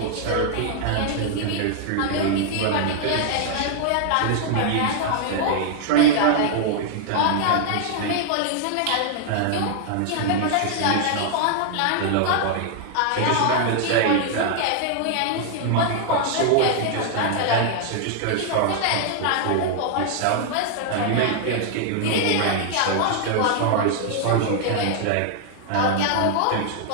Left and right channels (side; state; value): both; different; correlation 0.00